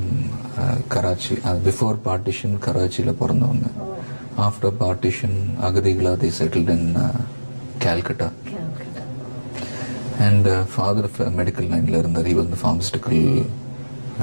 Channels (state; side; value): inverted; both; correlation -1.00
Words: Karachi. Before partition கராச்சியில் பிறந்தவங்க. ஆஃப்டர் பார்ட்டிஷன் அகதிகளா they settled in Calcutta. And father medical லைன்ல இருந்தார். he was the pharmaceutical